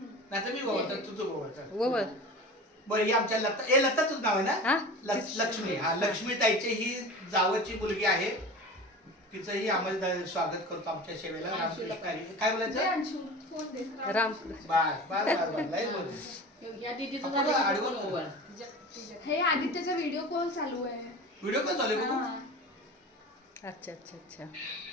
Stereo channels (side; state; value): both; normal; correlation 0.34